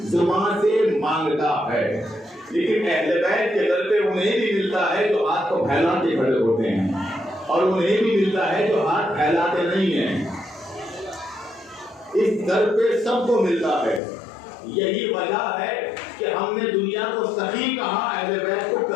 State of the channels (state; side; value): drops out; right; at 14.0 s